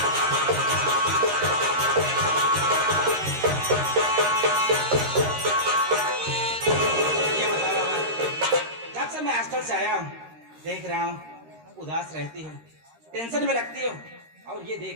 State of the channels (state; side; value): late; left; 13 ms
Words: से आया हूँ, देख रहा हूँ उदास रहती हो, टेंशन में लगती हो, और ये